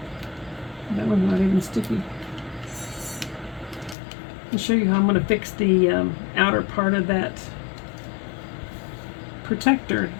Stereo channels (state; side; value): drops out; right; at 4.0 s